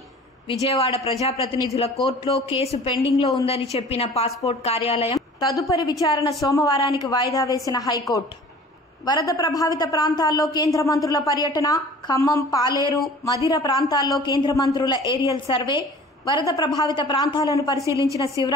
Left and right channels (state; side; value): normal; both; correlation 0.45